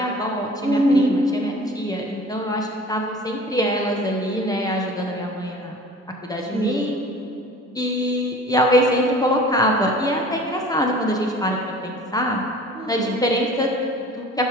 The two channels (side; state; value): both; normal; correlation 0.45